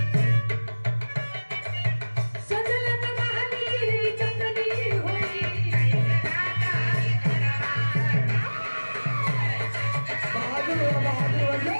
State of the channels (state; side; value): inverted; both; correlation -1.00